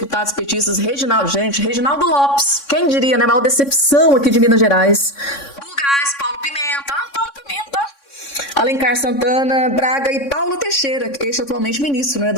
petistas, Reginaldo Lopes, quem diria, né? A maior decepção aqui de Minas Gerais. Bulgás, Paulo Pimenta, Alencar Santana, Braga e Paulo Teixeira, este atualmente ministro, né,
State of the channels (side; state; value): right; late; 3.6 ms